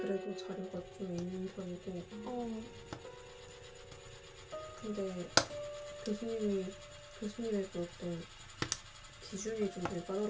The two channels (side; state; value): both; identical; correlation 1.00